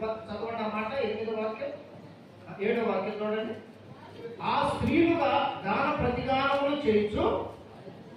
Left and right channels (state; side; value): identical; both; correlation 1.00